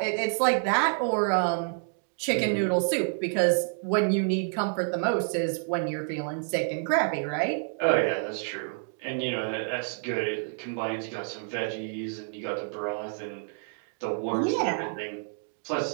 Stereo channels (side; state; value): left; silent; digital silence